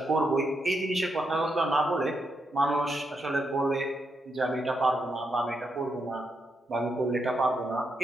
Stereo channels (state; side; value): normal; both; correlation 0.82